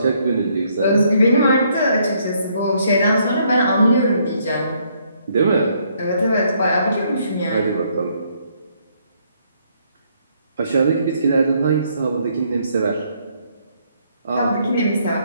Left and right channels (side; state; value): both; inverted; correlation -0.70